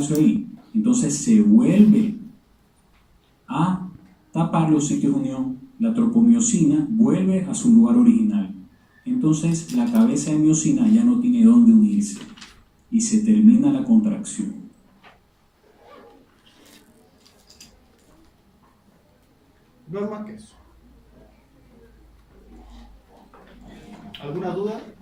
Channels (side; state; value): both; identical; correlation 1.00